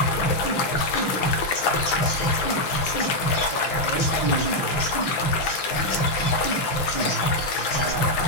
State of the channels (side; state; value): right; late; 5.8 ms